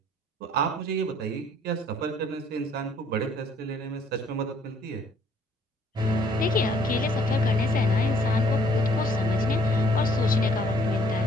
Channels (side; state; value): both; normal; correlation 0.62